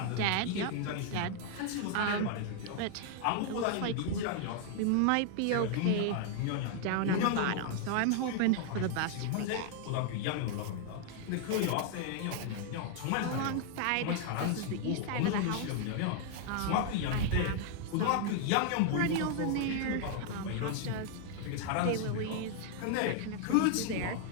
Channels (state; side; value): different; both; correlation 0.00